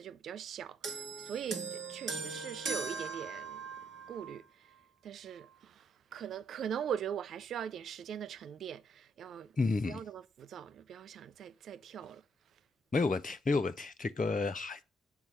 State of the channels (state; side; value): normal; both; correlation 0.73